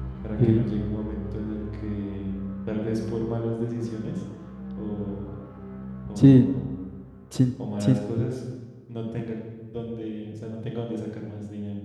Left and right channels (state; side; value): identical; both; correlation 1.00